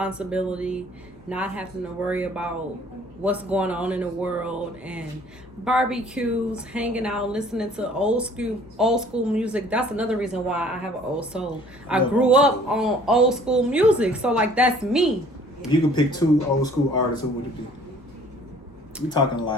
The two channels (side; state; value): both; normal; correlation 0.54